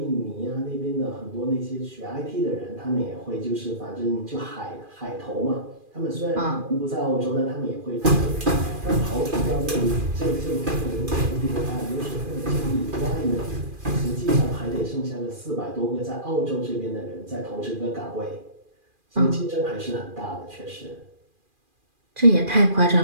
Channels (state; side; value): late; left; 2.4 ms